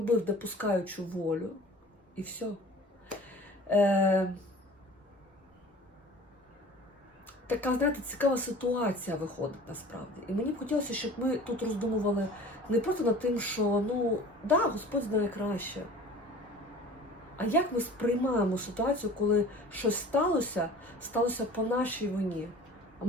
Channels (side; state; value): both; normal; correlation 0.43